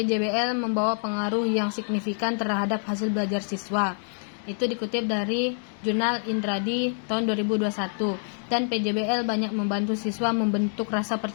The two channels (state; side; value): silent; right; 57 dB below the other